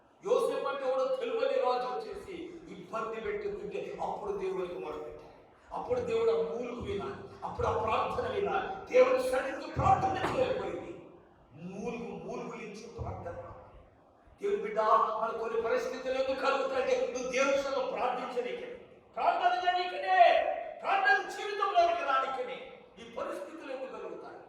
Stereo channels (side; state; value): both; identical; correlation 1.00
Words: యోసేపు అంటే ఎవడో తెలువని రాజు వచ్చేసి ఇబ్బంది పెట్టుకుంటే అప్పుడు దేవుడికి మొదలుపెట్టాడు. అప్పుడు దేవుడు ఆ మూలుగు వినాలి, అప్పుడు ఆ ప్రార్థన వినాలి. దేవుడి సన్నిధికి ప్రార్థన చేయకపోయింది, మూలుగులించి ప్రార్థన. దేవుడి బిడ్డ, మన కొన్ని పరిస్థితులు ఎందుకు కలుగుతాయంటే నువ్వు దేవుడి సన్నిధిలో ప్రార్థించనీకే, ప్రార్థన చేయనీకనే, ప్రార్థన జీవితంలోనికి రానికనే ఈ పరిస్థితులు ఎందుకు కలుగుతాయి?